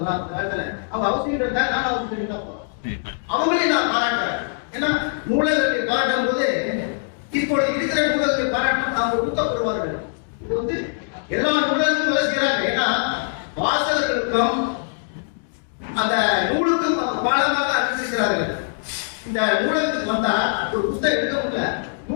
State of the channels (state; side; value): silent; right; digital silence